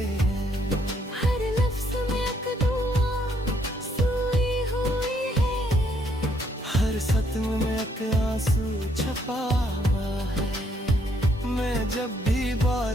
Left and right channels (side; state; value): both; normal; correlation 0.70